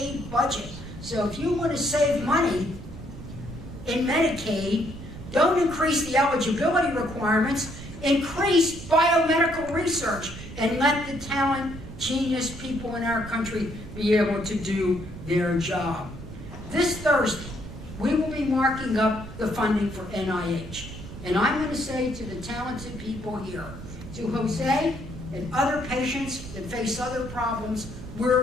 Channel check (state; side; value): noise; right; rumble, 12 dB below the sound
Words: budget. So if you want to save money in Medicaid, don't increase the eligibility requirements, increase biomedical research, and let the talent, genius people in our country be able to do their job. This Thursday, we will be marking up the funding for NIH. And I'm going to say to the talented people here, to Jose and other patients that face other problems,